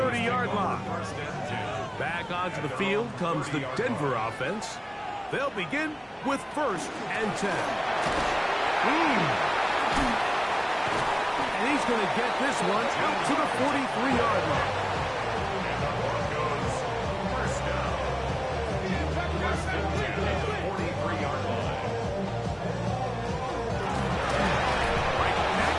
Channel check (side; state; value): both; identical; correlation 1.00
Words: line. Back onto the field comes the Denver offense. They'll begin with 1st and 10. And he's going to get this one out to the 43-yard line.